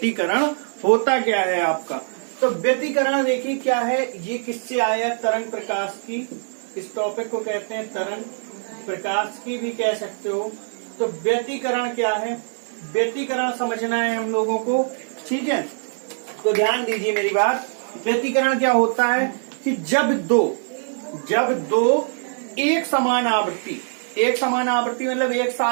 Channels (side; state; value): left; silent; digital silence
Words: होता क्या है आपका, तो व्यतिकरण देखिए क्या है। ये किससे आया? तरंग प्रकाश की। इस टॉपिक को कहते हैं तरंग प्रकाश की भी कह सकते हो। तो व्यतिकरण क्या है, व्यतिकरण समझना है हम लोगों को, ठीक है। तो ध्यान दीजिए मेरी बात। व्यतिकरण क्या होता है कि जब दो एक समान आवृत्ति मतलब एक